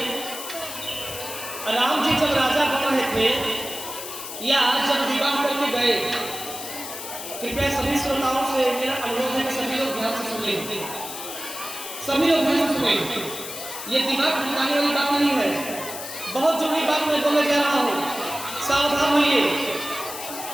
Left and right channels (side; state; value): left; noise; hiss, 9 dB below the sound